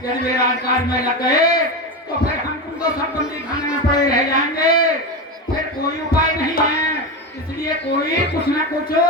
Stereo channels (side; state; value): both; normal; correlation 0.18